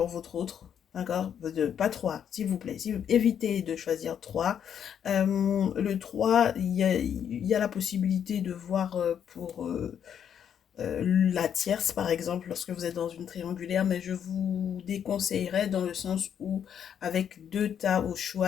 votre autre, d'accord? Pas trois, s'il vous plaît. Évitez de choisir trois. Le 3, il y a la possibilité de voir pour la tierce par exemple lorsque vous êtes dans une triangulaire, mais je vous déconseillerais dans le sens où avec 2 tas au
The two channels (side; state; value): right; quieter; 8.7 dB